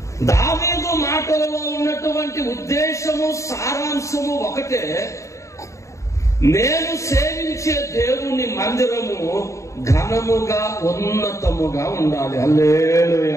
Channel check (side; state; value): right; late; 0.15 ms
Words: దావీదు మాటలలో ఉన్నటువంటి ఉద్దేశము, సారాంశము ఒకటే. నేను సేవించే దేవుని మందిరము ఘనముగా ఉన్నతముగా ఉండాలి.